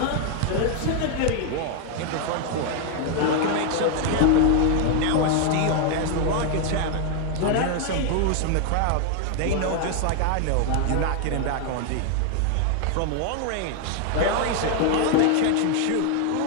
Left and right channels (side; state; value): both; different; correlation 0.00